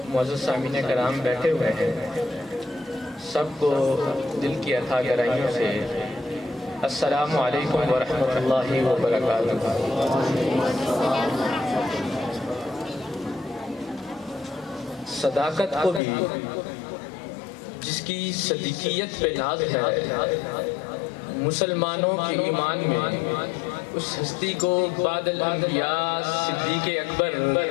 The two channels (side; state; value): right; drops out; at 16.0 s